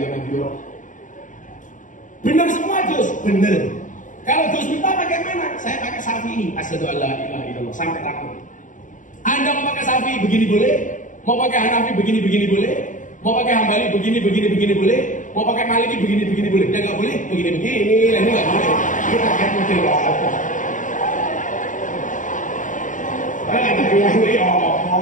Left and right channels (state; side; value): late; right; 0.37 ms